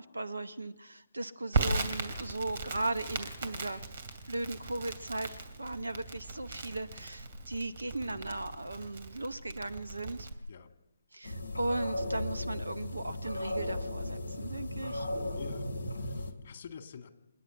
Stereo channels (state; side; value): inverted; both; correlation -0.84